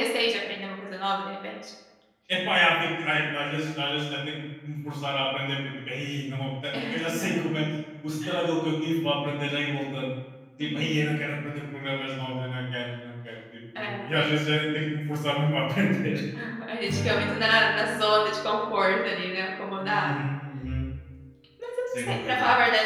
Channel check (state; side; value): identical; both; correlation 1.00